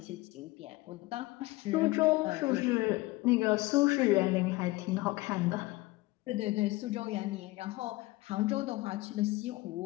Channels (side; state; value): right; quieter; 20.6 dB